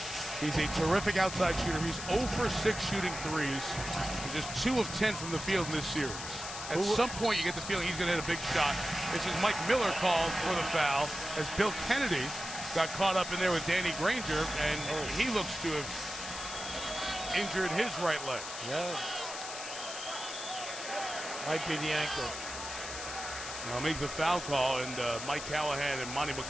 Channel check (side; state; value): left; noise; hiss, 8 dB below the sound